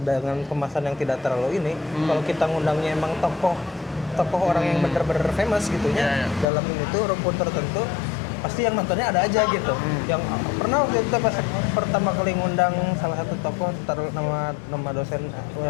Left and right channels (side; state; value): right; drops out; at 6.5 s